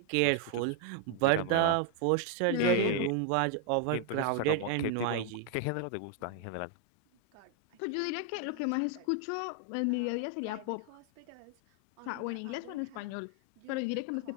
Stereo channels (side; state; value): both; different; correlation 0.00